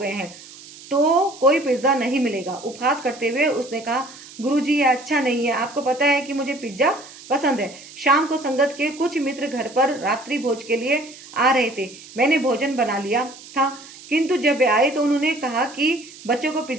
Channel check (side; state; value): right; noise; hiss, 18 dB below the sound